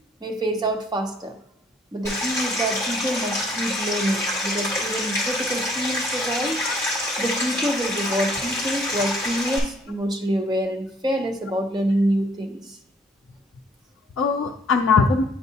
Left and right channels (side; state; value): both; normal; correlation 0.61